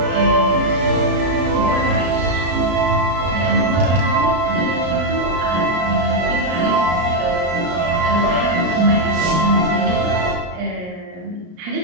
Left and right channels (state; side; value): late; left; 33 ms